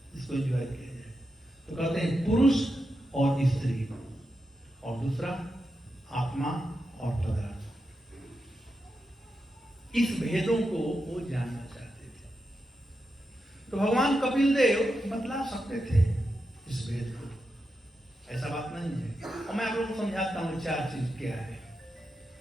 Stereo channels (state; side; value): normal; both; correlation 0.88